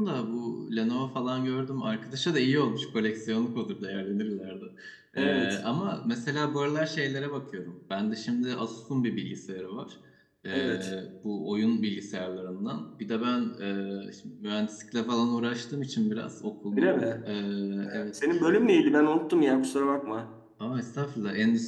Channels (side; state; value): both; identical; correlation 1.00